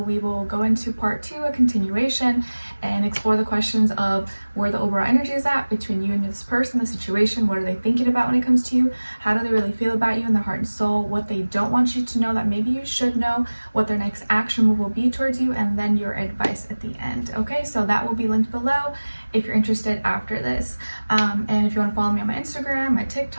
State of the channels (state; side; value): inverted; both; correlation -1.00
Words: will go into part 2, a continuation, and explore the questions of where the overall energy is at between you and this person, the situation. What are they thinking about when it comes to you? How do they really feel about you in their heart and soul? What they don't want you to know that maybe you should know, what their next action move will be towards you, and then your advice at the end. Okay, so that will be linked below if you're interested after this. And if you want to follow me on my Instagram, my